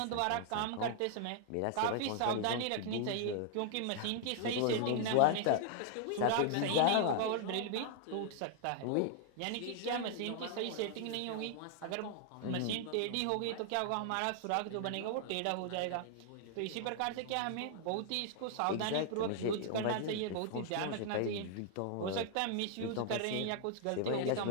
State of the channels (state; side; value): different; both; correlation 0.00